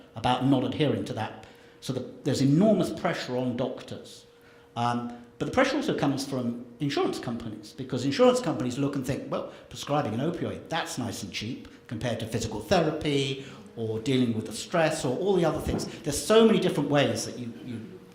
about not adhering to that. So there's enormous pressure on doctors. But the pressure also comes from insurance companies, because insurance companies look and think, well, prescribing an opioid, that's nice and cheap compared to physical therapy or dealing with the stress or all the other things. There's so many different ways that you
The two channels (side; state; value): both; identical; correlation 1.00